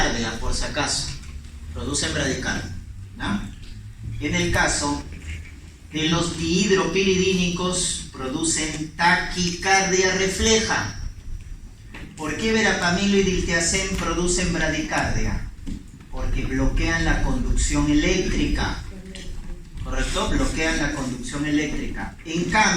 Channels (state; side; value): identical; both; correlation 1.00